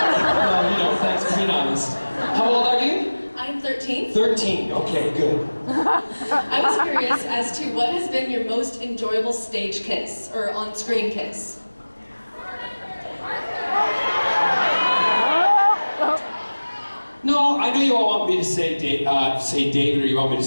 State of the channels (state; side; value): inverted; both; correlation -1.00